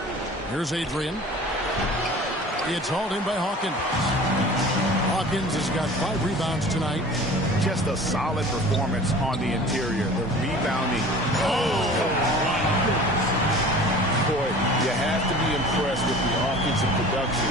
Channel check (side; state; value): both; normal; correlation 0.43